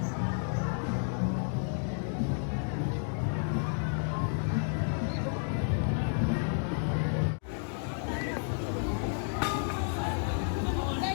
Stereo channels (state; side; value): silent; right; 57 dB below the other